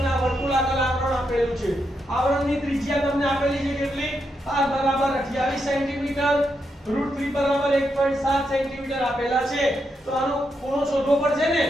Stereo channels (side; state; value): both; normal; correlation 0.82